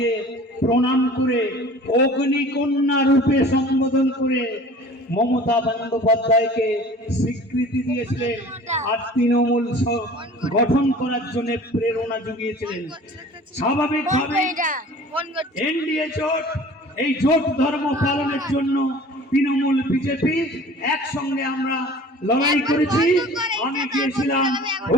প্রণাম করে অগ্নিকন্যা রূপে সম্বোধন করে মমতা বন্দ্যোপাধ্যায়কে স্বীকৃতি দিয়েছিলেন আর তৃণমূল গঠন করার জন্য প্রেরণা জুগিয়েছিলেন। স্বাভাবিকভাবে এনডিএ জোট, এই জোট ধর্ম পালনের জন্য তৃণমূল বিজেপি একসঙ্গে আমরা লড়াই করেছি। আমি গিয়েছিলাম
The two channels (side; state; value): both; normal; correlation 0.44